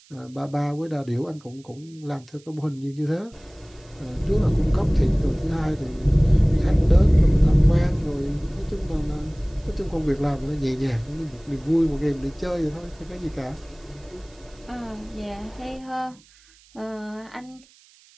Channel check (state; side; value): noise; right; hiss, 28 dB below the sound